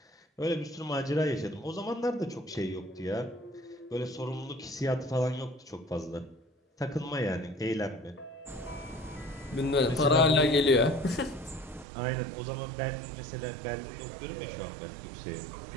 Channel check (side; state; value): left; drops out; at 11.9 s